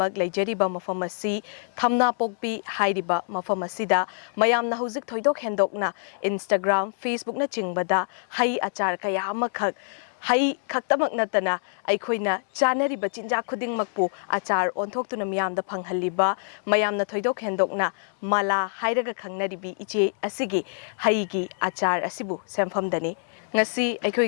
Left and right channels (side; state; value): right; silent; digital silence